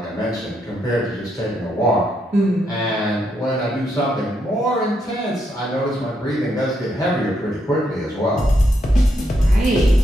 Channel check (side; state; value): both; normal; correlation 0.78